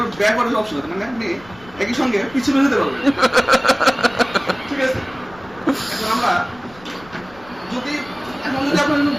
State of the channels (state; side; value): noise; left; rumble, 23 dB below the sound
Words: ব্যাক করার অপশন আছে, মানে আপনি একই সঙ্গে পিছনে যেতে পারবেন। ঠিক আছে, এখন আমরা যদি আপনার